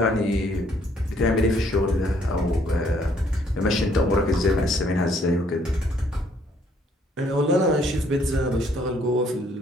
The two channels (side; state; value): both; normal; correlation 0.65